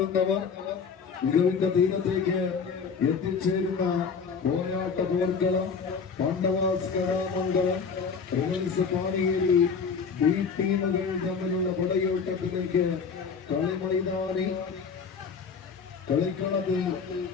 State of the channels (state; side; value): quieter; right; 5.7 dB